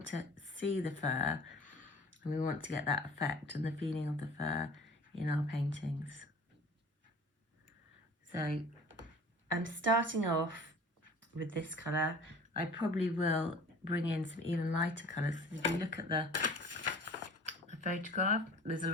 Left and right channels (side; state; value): both; normal; correlation 0.44